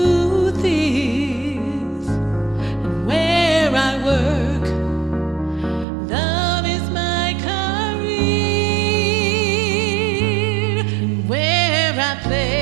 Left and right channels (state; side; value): drops out; left; at 5.9 s